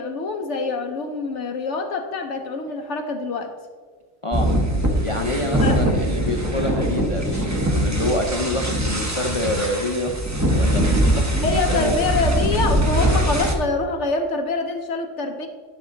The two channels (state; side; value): normal; both; correlation 0.35